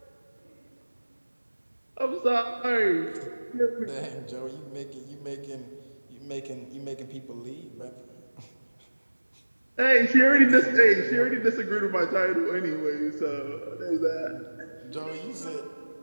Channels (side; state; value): both; inverted; correlation -1.00